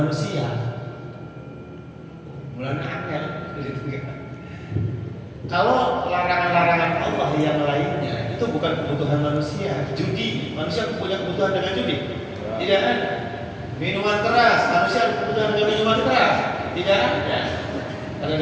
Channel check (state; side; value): identical; both; correlation 1.00